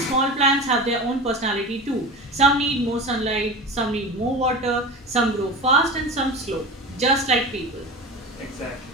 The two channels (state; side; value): normal; both; correlation 0.30